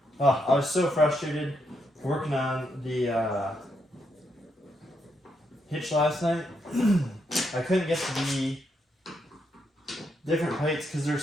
Oh, I was so frustrated working on the hitch last night. I couldn't get to the different plates because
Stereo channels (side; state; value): both; normal; correlation 0.79